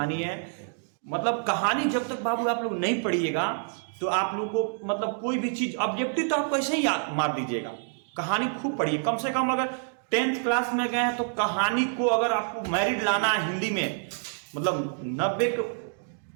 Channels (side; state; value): left; silent; 60 dB below the other